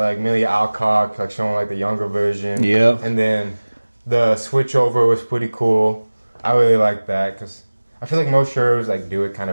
Amelia Alcock like showing like the younger version. Yeah. And then the switch over was pretty cool. I really liked that because I feel like most shows like do it kind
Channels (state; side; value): inverted; both; correlation -1.00